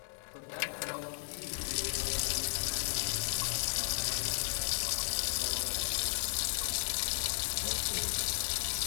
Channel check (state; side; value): silent; right; digital silence